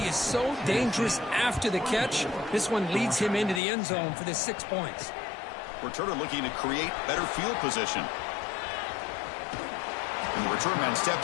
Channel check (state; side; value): drops out; right; at 3.6 s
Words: is so dangerous after the catch. This one leads him into the end zone for the 6 points. Returner looking to create better field position. And the return man